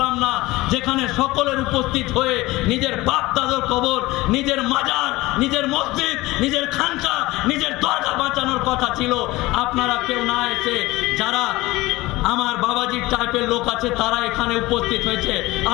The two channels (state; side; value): quieter; right; 19.7 dB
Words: না, যেখানে সকলের উপস্থিত হয়ে নিজের বাপ দাদুর কবর, নিজের মাজার, নিজের মসজিদ, নিজের খানকা, নিজের দরগা বাঁচানোর কথা ছিল, আপনারা কেউ না এসে যারা আমার বাবাজির টাইপের লোক আছে তারা এখানে উপস্থিত হয়েছে।